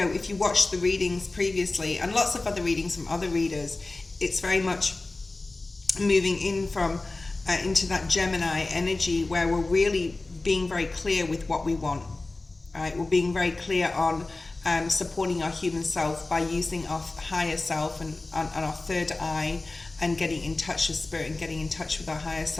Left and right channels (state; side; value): quieter; right; 3.2 dB